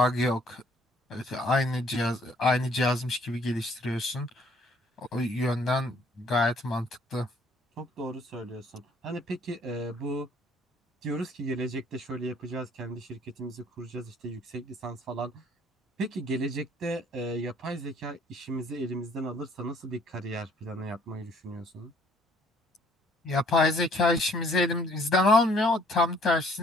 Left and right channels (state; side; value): normal; both; correlation 0.60